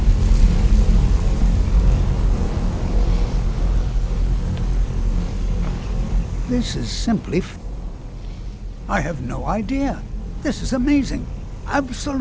This is simply I have no idea. This is amazing.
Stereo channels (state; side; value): identical; both; correlation 1.00